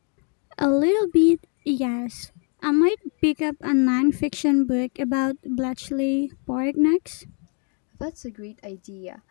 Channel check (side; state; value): right; quieter; 39.5 dB